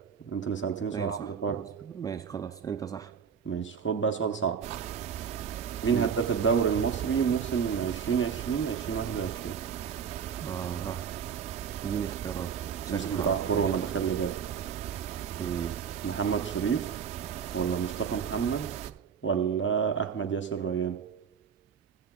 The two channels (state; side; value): quieter; left; 6.9 dB